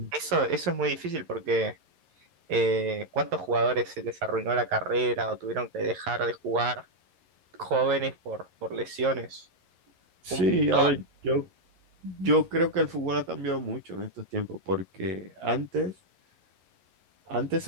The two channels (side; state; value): left; late; 11 ms